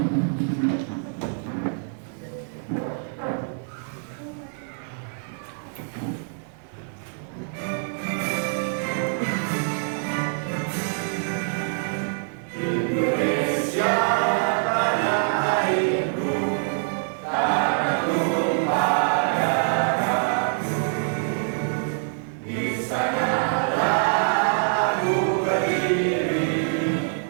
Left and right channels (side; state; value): left; silent; digital silence